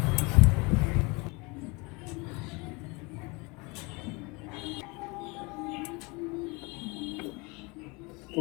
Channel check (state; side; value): quieter; right; 27.2 dB